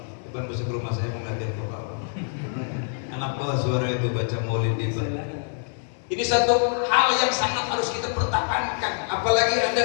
Depan besok rumah saya mengajar ke bawah. Anak bawah suara itu baca maulid di bawah. Ini satu hal yang sangat harus kita pertahankan. Apalagi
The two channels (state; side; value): silent; right; 62 dB below the other